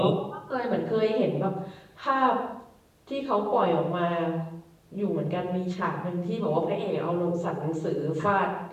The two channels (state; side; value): identical; both; correlation 1.00